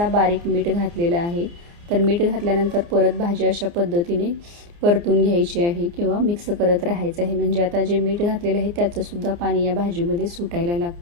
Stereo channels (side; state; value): left; late; 29 ms